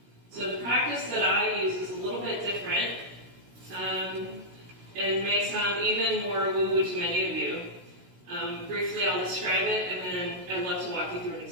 So the practice that I use is a little bit different, and may sound even more woo-woo to many of you. Briefly, I'll describe it, and then I'd love to walk you through an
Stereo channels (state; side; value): late; left; 16 ms